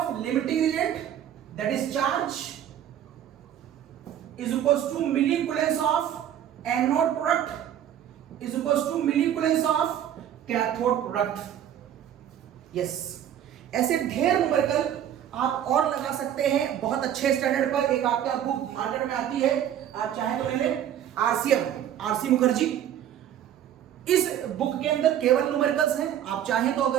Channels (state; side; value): quieter; left; 10.4 dB